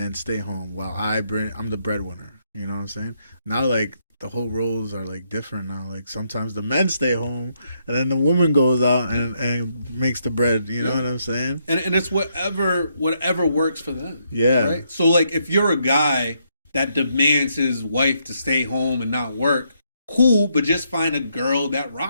stay home while I'm the breadwinner. You know what I'm saying? Now, like, the whole roles are, like, different now. Like, sometimes the men stay home, and then the woman goes out and makes the bread. You know what I'm saying? And it's whatever works for them. Yeah. Right? So, like, if you're a guy that demands his wife to stay home and not work, cool, but just find a girl that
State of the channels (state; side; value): inverted; both; correlation -0.76